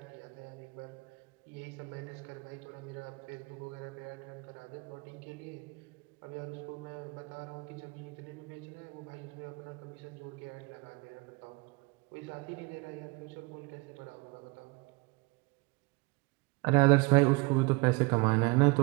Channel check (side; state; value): left; quieter; 26.9 dB